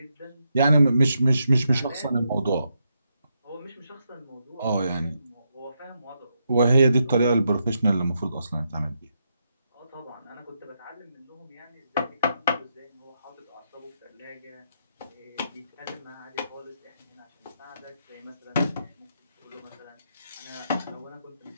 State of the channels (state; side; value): inverted; both; correlation -0.81